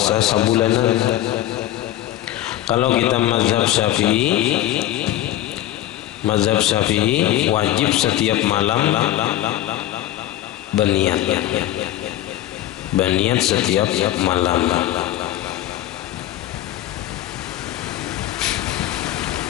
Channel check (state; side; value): quieter; right; 13.7 dB